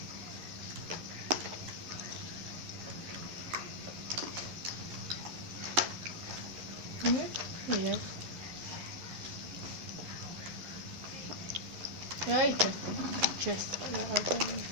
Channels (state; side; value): late; left; 11 ms